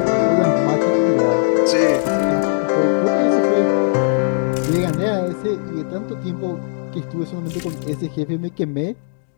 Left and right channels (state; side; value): silent; right; digital silence